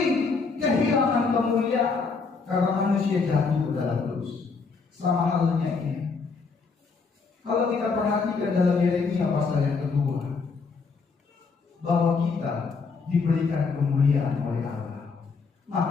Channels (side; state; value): right; quieter; 4.7 dB